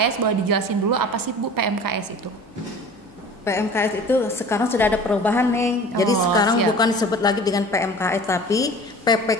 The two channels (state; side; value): normal; both; correlation 0.42